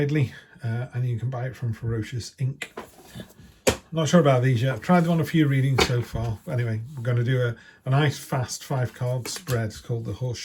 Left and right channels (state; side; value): identical; both; correlation 1.00